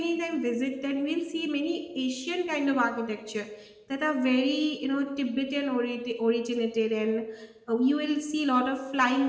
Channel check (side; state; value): both; identical; correlation 1.00